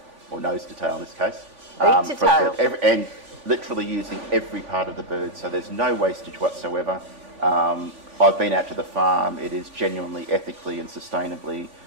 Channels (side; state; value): left; late; 3.5 ms